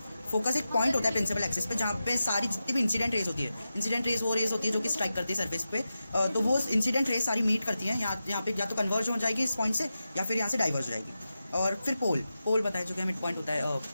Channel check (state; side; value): inverted; both; correlation -0.91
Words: फोकस एक पॉइंट होता है प्रिंसिपल एक्सिस पे जहाँ पे सारी जितनी भी इंसिडेंट रेस होती है, इंसिडेंट रेस वो रेस होती है जो कि स्ट्राइक करती है सरफेस पे, तो वो इंसिडेंट रेस सारी मीट करती हैं यहाँ पे, या तो कन्वर्ज हो जाएगी इस पॉइंट से या फिर यहाँ से डाइवर्ज हो जाएगी। और फिर पोल बताया जो कि मिड पॉइंट होता है